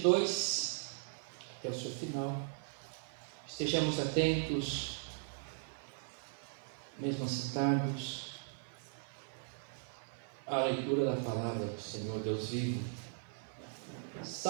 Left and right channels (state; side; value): silent; left; 52 dB below the other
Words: até o seu final. Estejamos atentos, mesmo assentados, à leitura da palavra do Senhor Deus vivo.